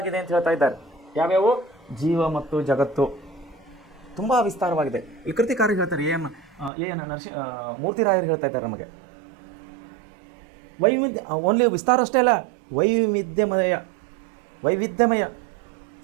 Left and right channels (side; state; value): left; drops out; at 6.7 s